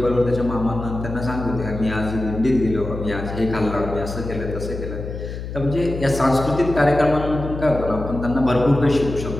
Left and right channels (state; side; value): noise; left; hum, 8 dB below the sound